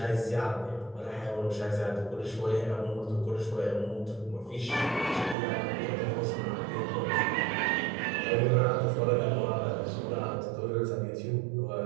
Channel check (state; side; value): drops out; left; at 5.4 s